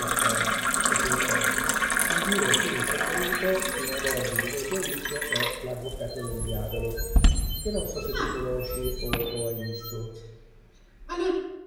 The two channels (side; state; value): both; identical; correlation 1.00